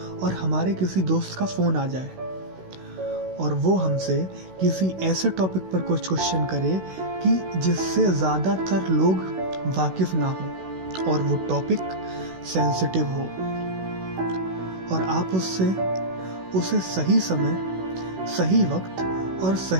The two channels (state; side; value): late; left; 16 ms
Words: और हमारे किसी दोस्त का फोन आ जाए और वो हमसे किसी ऐसे टॉपिक पर कुछ क्वेश्चन करे कि जिससे ज़्यादातर लोग वाकिफ ना हो और वो टॉपिक सेंसिटिव हो, और आप उसे सही समय, सही वक्त और